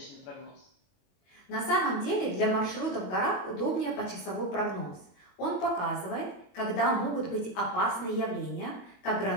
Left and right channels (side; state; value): right; late; 22 ms